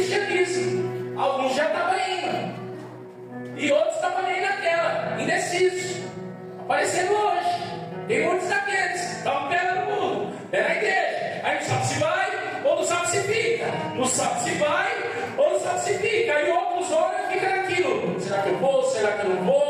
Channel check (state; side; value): identical; both; correlation 1.00